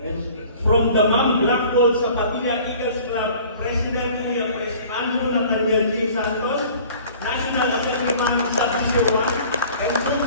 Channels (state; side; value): inverted; both; correlation -0.48